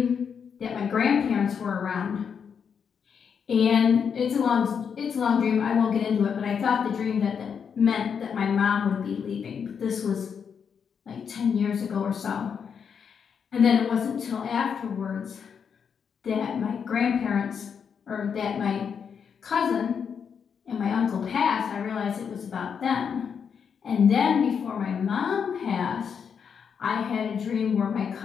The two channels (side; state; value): right; quieter; 6.9 dB